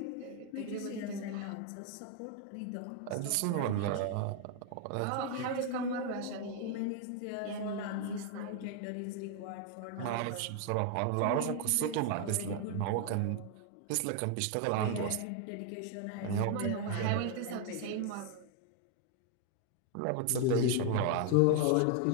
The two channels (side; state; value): both; different; correlation 0.00